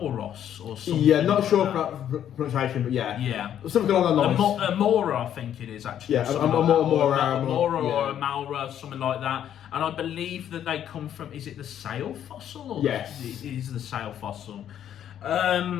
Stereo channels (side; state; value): right; quieter; 10.2 dB